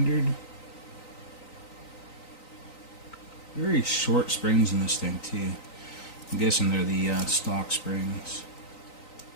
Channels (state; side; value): late; right; 3.9 ms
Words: Very short springs in this thing too. I'm guessing they're the stock springs.